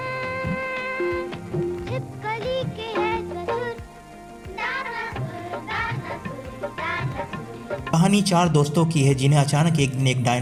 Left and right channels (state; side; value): identical; both; correlation 1.00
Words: कहानी 4 दोस्तों की है जिन्हें अचानक एक दिन एक